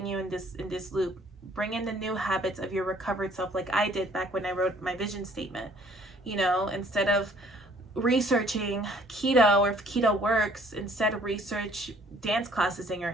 you in this loop. Bring in the new habits of your recovered self, like I did back when I wrote my vision statement. You know, instead of researching keto, or if keto works, instead of research dance classes in your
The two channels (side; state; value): both; normal; correlation 0.58